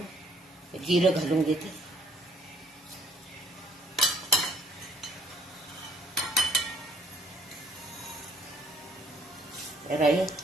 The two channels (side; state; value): both; normal; correlation 0.62